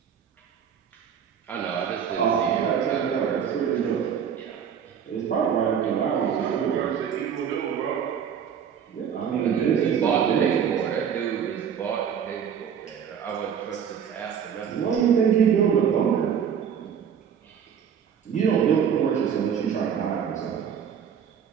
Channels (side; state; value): left; quieter; 7.9 dB